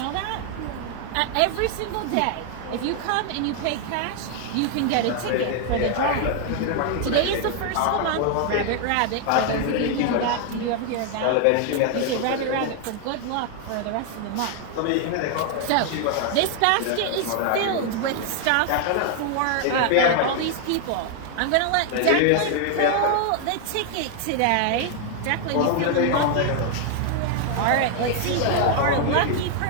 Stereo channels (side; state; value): both; different; correlation 0.00